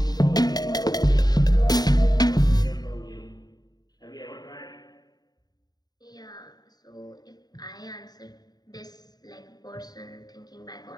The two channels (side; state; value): right; late; 0.19 ms